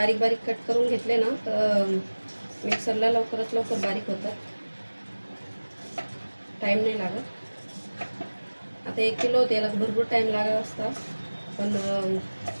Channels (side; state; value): both; inverted; correlation -1.00